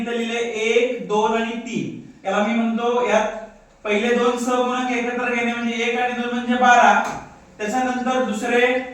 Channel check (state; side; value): identical; both; correlation 1.00